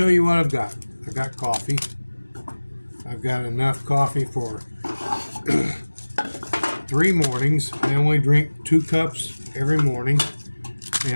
you what I've got. I've got coffee. I've got enough coffee for 3 mornings. I only drink 2 cups every morning,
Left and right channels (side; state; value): both; inverted; correlation -1.00